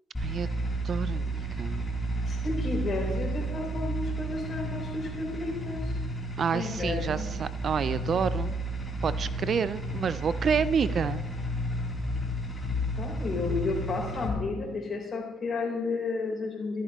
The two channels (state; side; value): normal; both; correlation 0.69